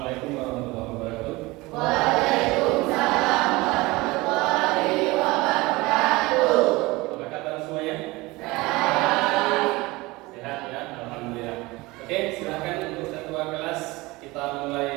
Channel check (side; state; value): left; quieter; 21.8 dB